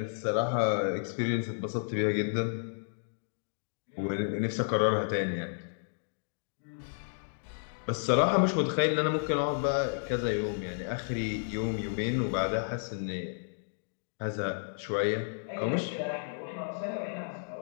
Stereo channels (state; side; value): silent; right; digital silence